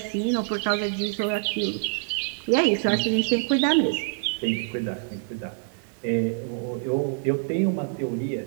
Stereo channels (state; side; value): silent; left; 61 dB below the other